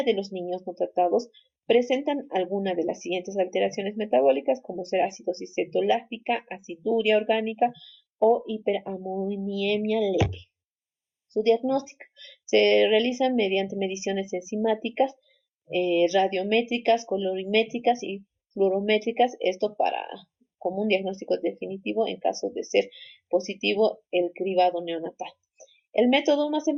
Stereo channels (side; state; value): both; identical; correlation 1.00